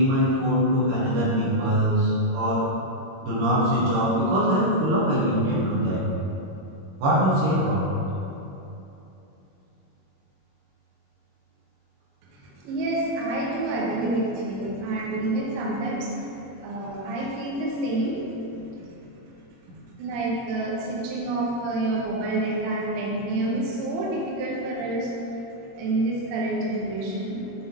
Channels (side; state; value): left; late; 21 ms